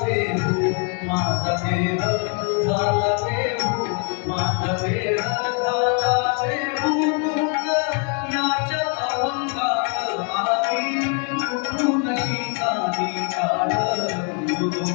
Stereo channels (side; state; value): right; quieter; 39.4 dB